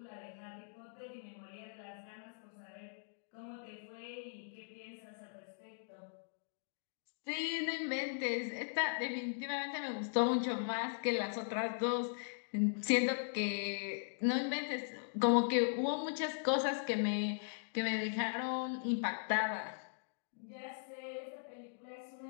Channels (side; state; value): right; silent; digital silence